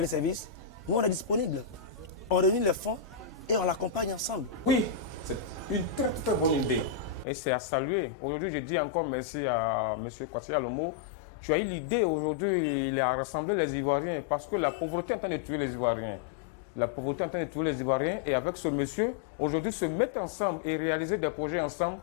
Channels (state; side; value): drops out; right; at 7.2 s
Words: service, nous on est disponible. On réunit les fonds et on l'accompagne ensemble. Oui, c'est une très très bonne idée et c'est à saluer. Aujourd'hui, je dis encore merci à M. Kwasi Alomo. Tu as eu l'idée aujourd'hui, il a rassemblé les Ivoiriens parce que la pauvreté est en train de tuer les Ivoiriens. La pauvreté est en train de tuer les Ivoiriens et avec ce monsieur, aujourd'hui, se mettre ensemble et réaliser des projets ensemble,